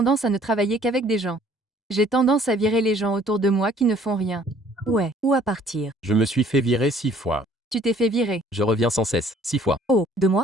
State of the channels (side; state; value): both; normal; correlation 0.57